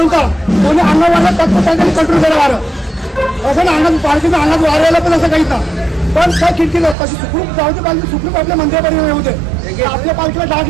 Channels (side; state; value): left; drops out; at 7.0 s